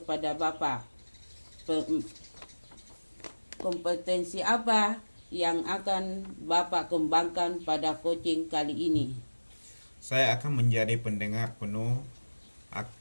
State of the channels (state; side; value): inverted; both; correlation -1.00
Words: Bapak, kompetensi apa yang akan Bapak kembangkan pada coaching kali ini? Saya akan menjadi pendengar penuh,